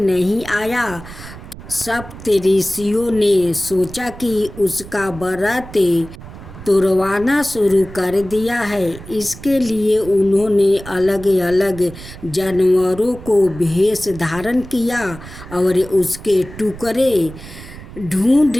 नहीं आया। सप्तऋषियों ने सोचा कि उसका व्रत तोड़वाना शुरू कर दिया है। इसके लिए उन्होंने अलग अलग जानवरों को भेष धारण किया और उसके टुकड़े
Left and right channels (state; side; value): noise; right; rumble, 15 dB below the sound